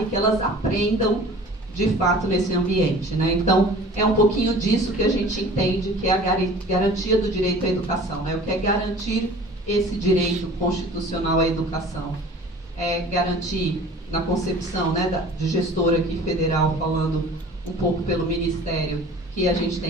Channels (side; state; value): both; normal; correlation 0.45